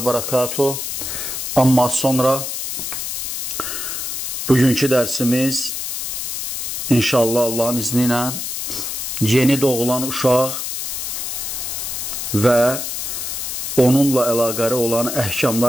barakatuh. Amma sonra bugünkü dərsimiz İnşallah Allahın izni ilə yeni doğulan uşaq və onunla əlaqəli olan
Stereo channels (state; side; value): noise; left; hiss, 4 dB below the sound